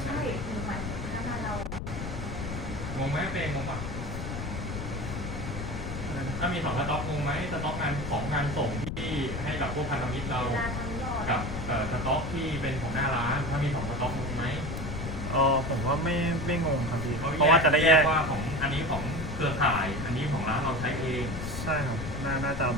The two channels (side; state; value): left; noise; rumble, 5 dB below the sound